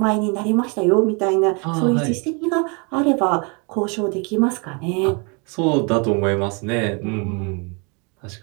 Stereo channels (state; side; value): quieter; left; 33.0 dB